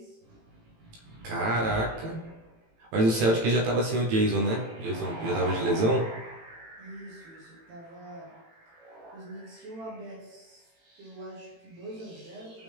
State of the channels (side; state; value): left; late; 18 ms